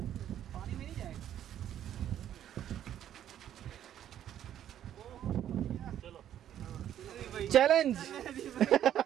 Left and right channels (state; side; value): quieter; left; 10.8 dB